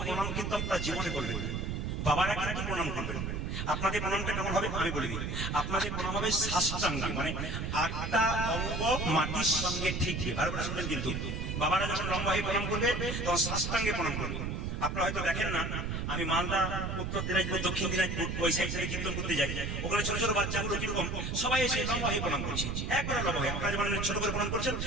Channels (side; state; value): right; noise; rumble, 2 dB below the sound